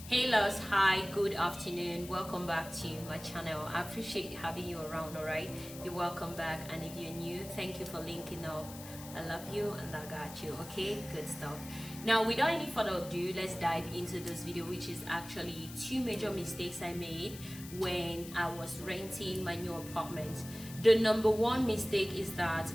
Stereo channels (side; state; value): left; noise; hiss, 14 dB below the sound